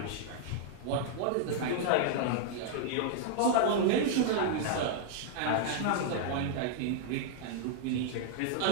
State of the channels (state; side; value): different; both; correlation -0.01